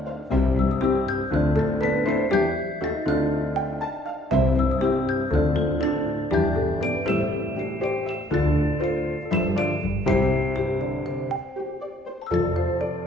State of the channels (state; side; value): normal; both; correlation 0.64